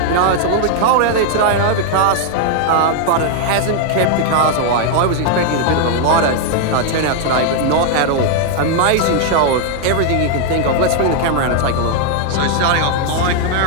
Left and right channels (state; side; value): different; both; correlation 0.00